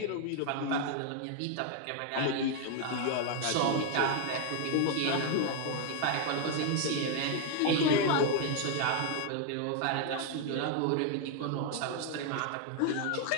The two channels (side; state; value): both; different; correlation 0.01